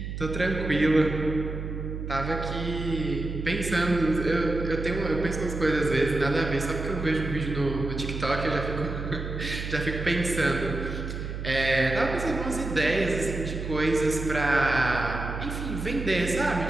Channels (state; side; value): noise; right; hum, 6 dB below the sound